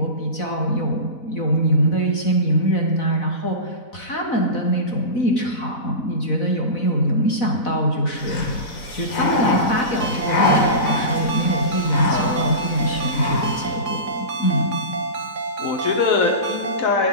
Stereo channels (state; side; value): late; right; 4.0 ms